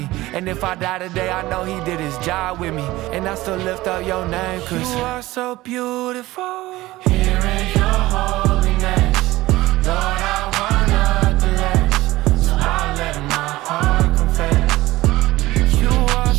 And if I die today, I know he did his job with me. And I still lift up your name, cause you are so beautiful. Here in your holiness, Lord, I wanna bless. So I let my heart confess. You are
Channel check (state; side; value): quieter; left; 18.0 dB